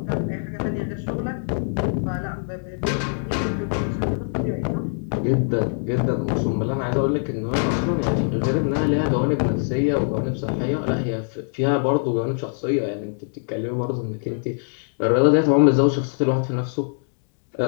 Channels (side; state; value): right; silent; digital silence